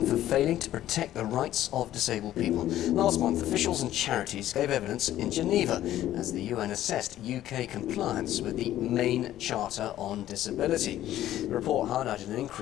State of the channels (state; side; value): quieter; right; 13.1 dB